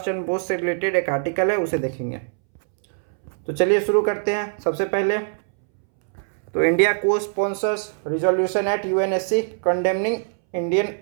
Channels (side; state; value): left; silent; 64 dB below the other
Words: चंद्र बोस से रिलेटेड एक आर्टिकल है, उसे देखेंगे। तो चलिए शुरू करते हैं। सबसे पहले तो इंडिया को sponsors resolution at UNSC condemning